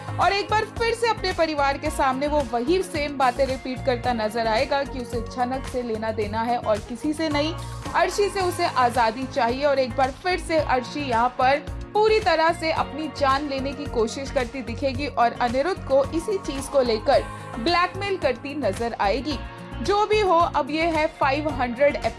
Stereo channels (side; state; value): both; identical; correlation 1.00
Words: और एक बार फिर से अपने परिवार के सामने वो वही सेम बातें रिपीट करता नजर आएगा कि उसे झनक से लेना देना है और किसी से नहीं, अर्शी से उसे आजादी चाहिए। और एक बार फिर से अर्शी यहाँ पर पूरी तरह से अपनी जान लेने की कोशिश करती दिखेगी और अनिरुद्ध को इसी चीज को लेकर ब्लैकमेल करती नजर आएगी। जो भी हो, अब ये है 500